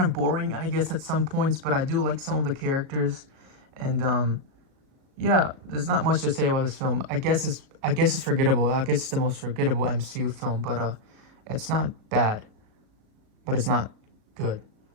of boring, I guess, at some points, but I do like some of the characters, and yeah, there's not much to say about this film. I guess it's forgettable. I guess it's the most forgettable MCU film, but it's not bad, but it's not good.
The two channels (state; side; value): late; left; 37 ms